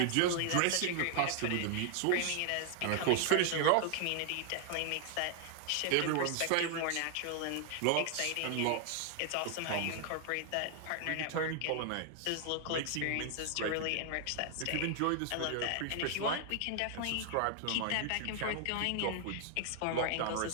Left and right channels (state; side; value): different; both; correlation 0.00